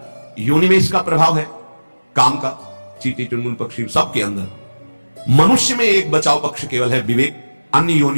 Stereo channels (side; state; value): both; inverted; correlation -1.00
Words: योनि में इसका प्रभाव है काम का, चींटी चुनमुन पक्षी सबके अंदर। मनुष्य में एक बचाव पक्ष केवल है विवेक, अन्य